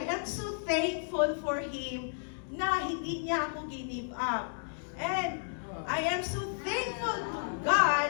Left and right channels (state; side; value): silent; right; digital silence